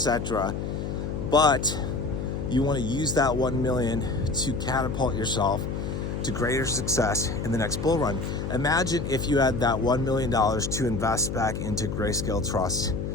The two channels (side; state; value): left; noise; hum, 4 dB below the sound